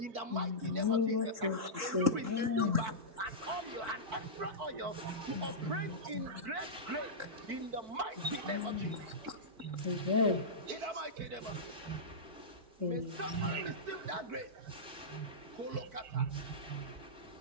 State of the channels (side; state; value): left; late; 4.5 ms